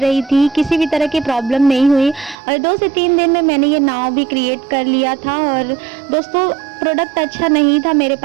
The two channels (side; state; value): left; drops out; at 2.4 s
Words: थी, किसी भी तरह की प्रॉब्लम नहीं हुई। और 2 से 3 दिन में मैंने ये नाव भी क्रिएट कर लिया था। और दोस्तों प्रोडक्ट अच्छा नहीं था मेरे